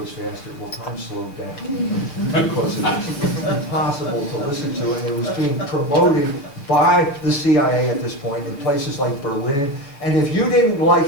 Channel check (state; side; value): late; right; 7.0 ms